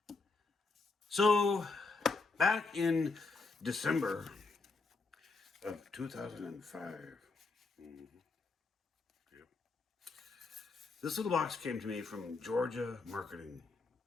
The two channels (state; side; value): quieter; right; 3.9 dB